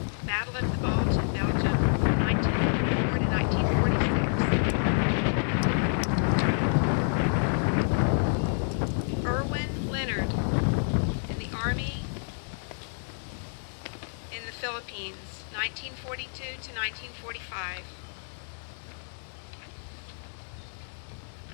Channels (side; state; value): right; silent; digital silence